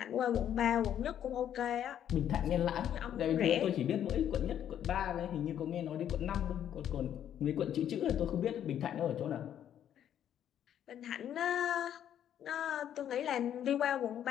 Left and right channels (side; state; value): right; quieter; 10.1 dB